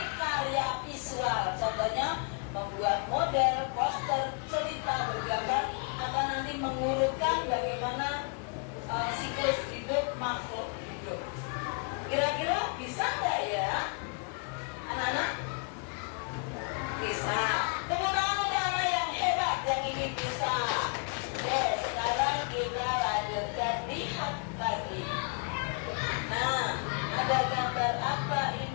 karya visual. Contohnya membuat model, poster, cerita bergambar akan nanti mengurutkan bagaimana siklus hidup makhluk hidup. Kira-kira bisa nggak ya, anak-anak? Bisa. Tepuk tangan untuk anak yang hebat yang ini bisa. Oke, sekarang kita lanjutkan lihat lagi. Nah, ada gambar apa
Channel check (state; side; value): quieter; right; 38.3 dB